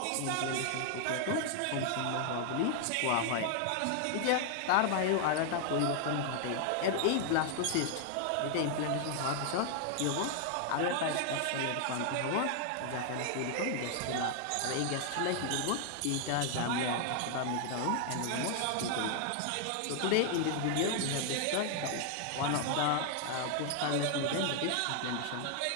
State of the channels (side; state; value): both; different; correlation 0.00